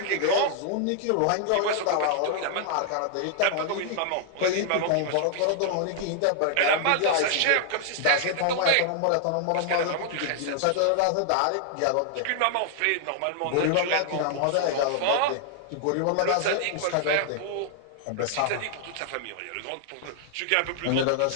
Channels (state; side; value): different; both; correlation 0.00